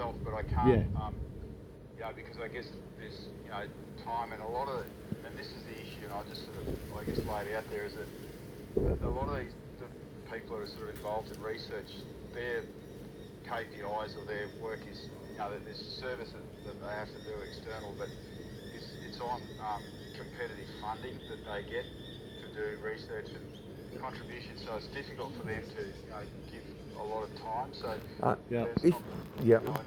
but I can't, Yeah. you know, because I guess there's, you know, time and a lot of, and this is the issue, and I just sort of, I guess, laid out there, is that a lot of the people that are sort of involved in research, their KPIs or their work is, you know, there's a service that they have to do external, but it's on competitive funding that they get to do research and contribution, so it's difficult for them to, you know, give a lot of time. So Yeah. there's If- not, yeah. you know, I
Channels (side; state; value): both; identical; correlation 1.00